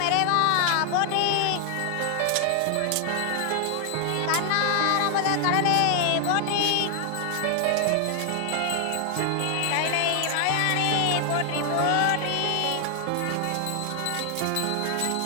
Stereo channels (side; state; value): both; different; correlation 0.00